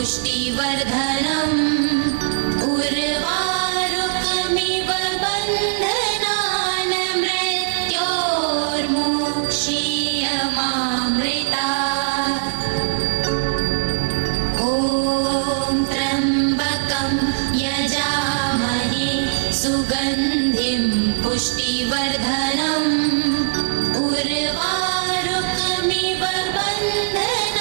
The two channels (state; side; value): silent; left; 64 dB below the other